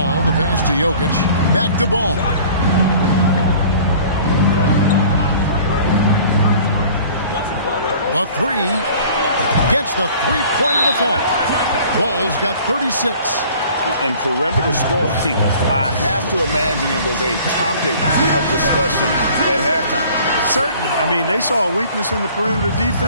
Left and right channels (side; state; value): both; inverted; correlation -0.49